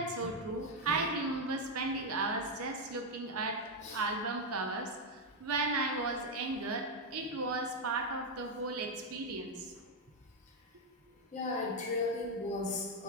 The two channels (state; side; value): normal; both; correlation 0.03